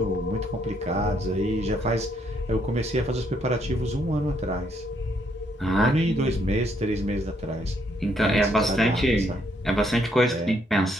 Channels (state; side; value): normal; both; correlation 0.72